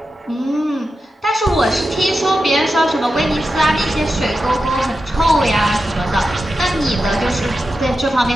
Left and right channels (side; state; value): both; normal; correlation 0.90